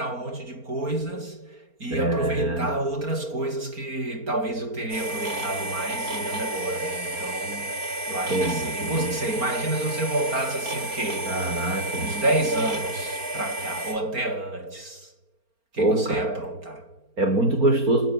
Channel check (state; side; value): late; left; 4.4 ms